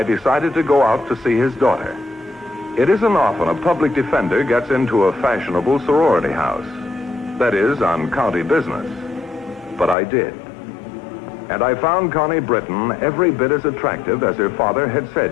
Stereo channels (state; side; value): drops out; right; at 10.0 s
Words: decided to go out to see his daughter. It isn't often a public defender gets into a fashionable sorority house. That is, on county business. But I did. And I found Connie Britton every bit as attractive as her father had said